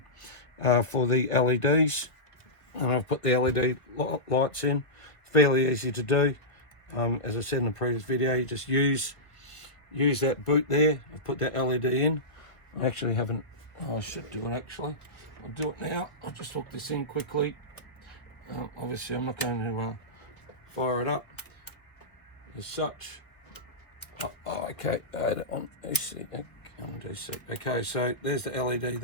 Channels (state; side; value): late; right; 1.4 ms